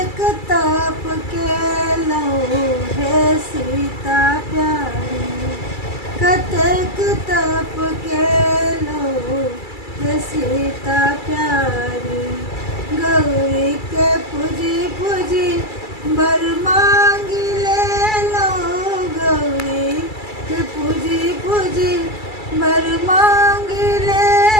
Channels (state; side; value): late; right; 2.3 ms